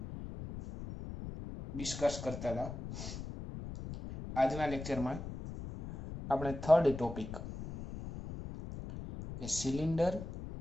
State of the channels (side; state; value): left; noise; rumble, 9 dB below the sound